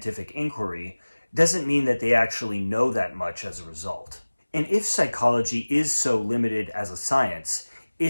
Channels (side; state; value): both; inverted; correlation -1.00